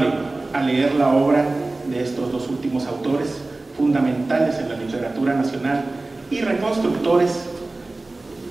a leer la obra de estos dos últimos autores fundamentales en la literatura nacional y reconstructores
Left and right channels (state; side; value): quieter; left; 3.1 dB